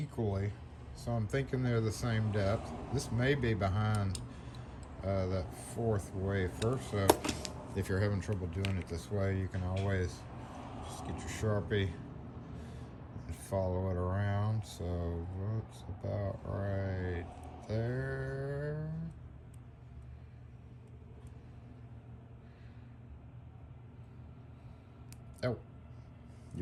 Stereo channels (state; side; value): identical; both; correlation 1.00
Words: so I'm thinking they're the same depth. This may be behind that 4th wafer, so if you're having trouble doing it this way, you can always just get your Sharpie and follow it around. So that's about right there. Oh,